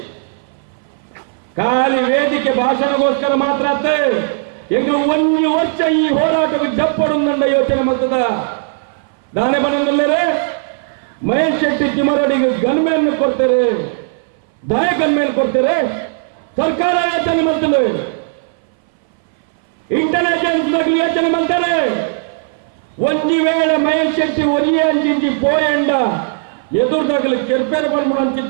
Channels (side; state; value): left; silent; 61 dB below the other